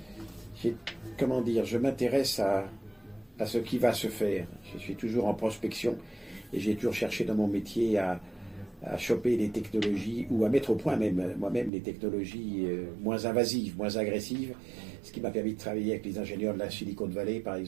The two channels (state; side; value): drops out; left; at 11.7 s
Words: je m'intéresse à ce qui va se faire. Je suis toujours en prospection et j'ai toujours cherché dans mon métier à choper des technologies ou à mettre au point moi-même les technologies moins invasives, moins agressives, ce qui m'a permis de travailler avec les ingénieurs de la Silicon Valley, par